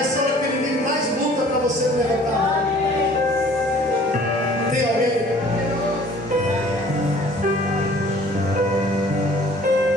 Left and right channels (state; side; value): normal; both; correlation 0.52